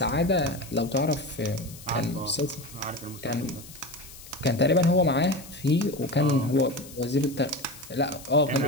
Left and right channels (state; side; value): noise; left; hiss, 17 dB below the sound